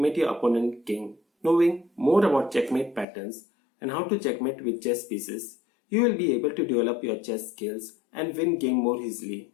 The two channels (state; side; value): drops out; right; at 3.1 s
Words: your opponent king. Knowing more about checkmate patterns and how to checkmate with chess pieces, you will be able to develop your chess skills and win game more easily.